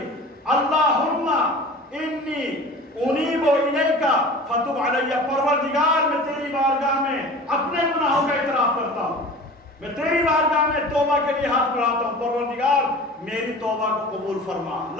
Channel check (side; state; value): both; normal; correlation 0.39